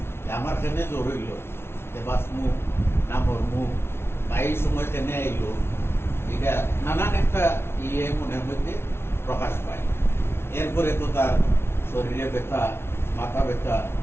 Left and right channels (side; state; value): right; late; 0.12 ms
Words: আমার কেনে জ্বর হইল, বাঁচমু না মরমু, বা এই সময় কেনে আইল, এটা নানান একটা মনের মধ্যে প্রকাশ পায়। এরপরে তো তার শরীরে ব্যথা, মাথা ব্যথা,